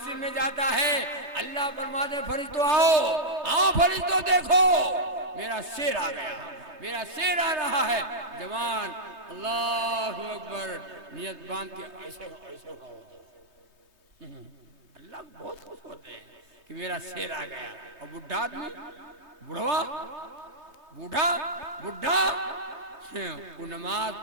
में जाता है, अल्लाह फरमाते फरिश्तों आओ फरिश्तों देखो मेरा शेर आ गया, मेरा शेर आ रहा है। जवान अल्लाह अकबर नियत बांध के ऐसे अल्लाह बहुत खुश होते हैं कि मेरा शेर आ गया। और बुढ़ा आदमी, बुढ़ा वो नमाज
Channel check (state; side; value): late; left; 3.2 ms